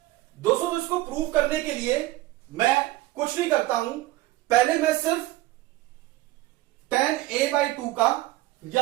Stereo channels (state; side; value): quieter; left; 17.4 dB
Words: दोस्तों तो इसको प्रूव करने के लिए मैं कुछ नहीं करता हूं, पहले मैं सिर्फ टेन ए बाई टू का